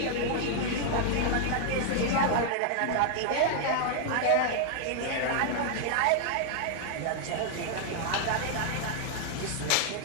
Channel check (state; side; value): different; both; correlation 0.00